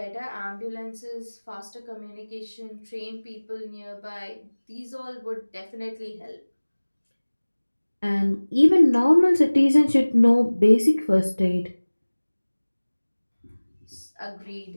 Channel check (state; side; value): inverted; both; correlation -1.00